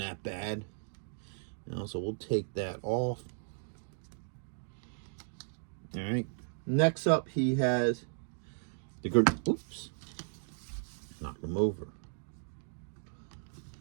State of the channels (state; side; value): silent; left; digital silence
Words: bad. You know, so we'll take that off. All right. Next up, he has the oops, knocked him over.